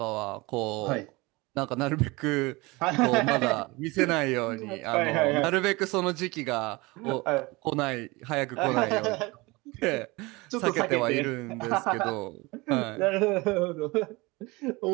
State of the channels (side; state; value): left; quieter; 23.6 dB